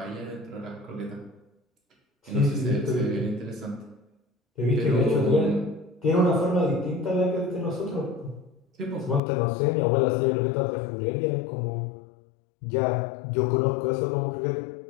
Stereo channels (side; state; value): right; drops out; at 9.2 s